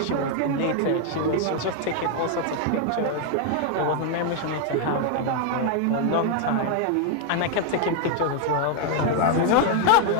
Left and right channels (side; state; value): both; different; correlation 0.00